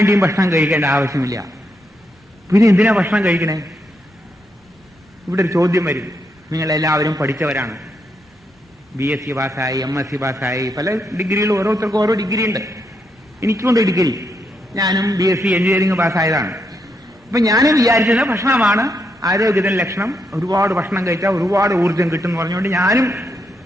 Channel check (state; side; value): normal; both; correlation 0.80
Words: ഭക്ഷണം കഴിക്കേണ്ട ആവശ്യമില്ല. പിന്നെ എന്തിനാ ഭക്ഷണം കഴിക്കണേ? ഇവിടെ ഒരു ചോദ്യം വരും. നിങ്ങളെല്ലാവരും പഠിച്ചവരാണ്, BSc പാസ്സായി, MSc പാസ്സായി, പല ഡിഗ്രികൾ, ഓരോരുത്തർക്കും ഓരോ ഡിഗ്രി ഉണ്ട്. എനിക്കുണ്ട് ഡിഗ്രി, ഞാനും BSc എഞ്ചിനീയറിംഗ് പാസ്സായതാണ്. അപ്പൊ ഞാനും വിചാരിച്ചത് ഭക്ഷണമാണ് ആരോഗ്യത്തിന് ലക്ഷണം, ഒരുപാട് ഭക്ഷണം കഴിച്ചാൽ ഒരുപാട് ഊർജം കിട്ടും എന്ന് പറഞ്ഞുകൊണ്ട് ഞാനും